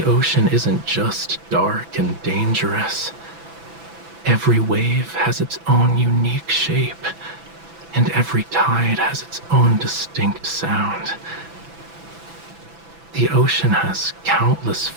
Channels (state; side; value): late; left; 6.0 ms